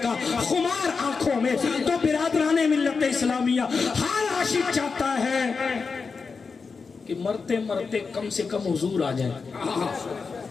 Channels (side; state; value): right; quieter; 4.9 dB